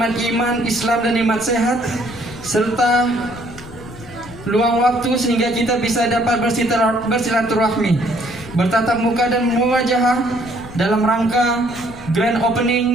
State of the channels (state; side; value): noise; left; rumble, 17 dB below the sound